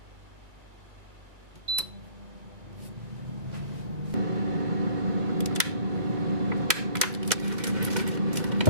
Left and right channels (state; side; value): late; left; 2.1 ms